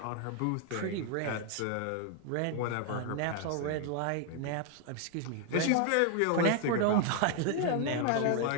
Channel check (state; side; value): different; both; correlation 0.00